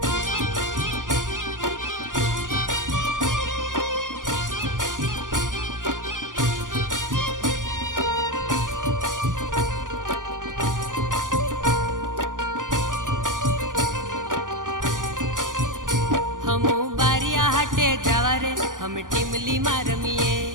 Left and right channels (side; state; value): left; late; 0.88 ms